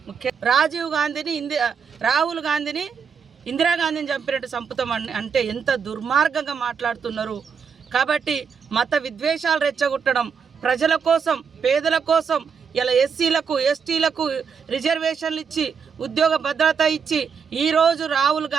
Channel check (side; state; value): left; quieter; 6.4 dB